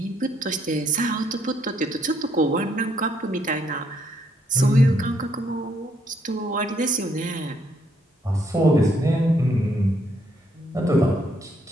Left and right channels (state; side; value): normal; both; correlation 0.71